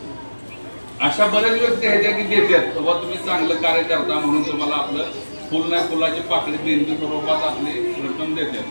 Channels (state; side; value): inverted; both; correlation -1.00